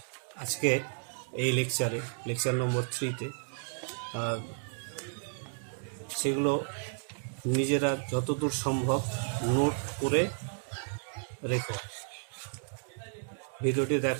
আজকে এই লেকচার নম্বর 3-তে, সেগুলো নিজেরা যতদূর সম্ভব নোট করে রেখো। ভিডিওটি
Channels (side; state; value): left; silent; digital silence